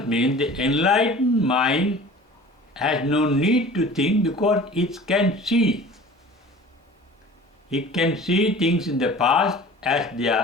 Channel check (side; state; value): both; normal; correlation 0.43